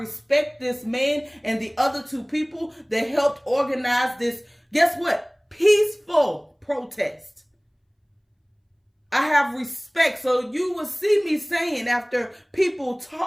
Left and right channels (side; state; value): both; identical; correlation 1.00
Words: this man and the other two people that helped organize this, guess what? Peaceful protest. I have respect. So you will see me saying, after people